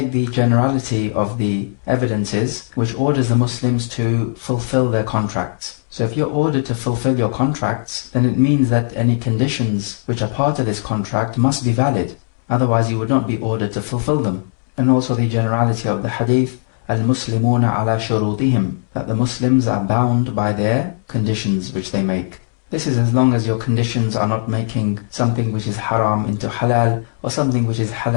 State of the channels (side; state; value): right; silent; 67 dB below the other